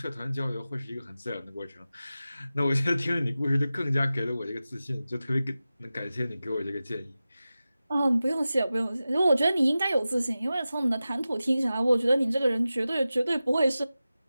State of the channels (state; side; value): inverted; both; correlation -0.95